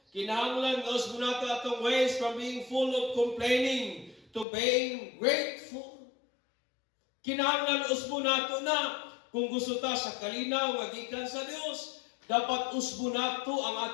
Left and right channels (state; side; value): drops out; right; at 4.5 s